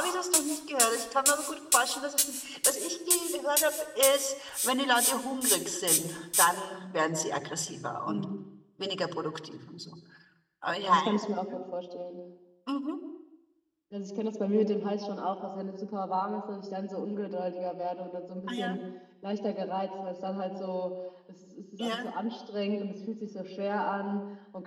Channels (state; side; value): identical; both; correlation 1.00